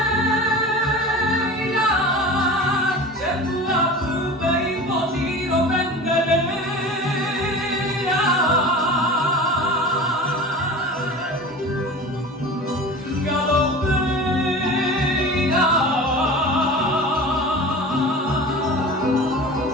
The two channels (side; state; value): both; normal; correlation 0.35